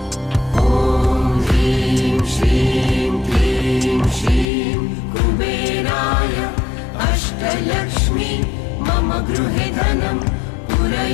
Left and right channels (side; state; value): right; drops out; at 4.5 s